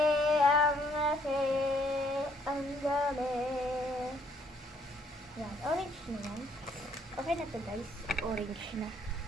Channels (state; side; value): normal; both; correlation 0.66